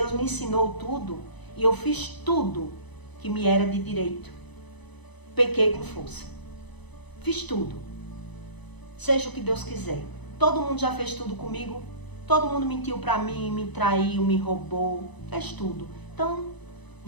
me ensinou tudo e eu fiz tudo que me era de direito. Pequei com força. Fiz tudo. Seja o que Deus quiser. Todo mundo já fez tudo comigo. Todo mundo mentiu pra mim, me traiu, me roubou. Fez tudo. Então,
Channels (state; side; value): late; right; 1.0 ms